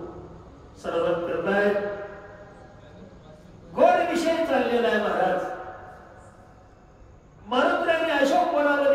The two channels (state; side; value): identical; both; correlation 1.00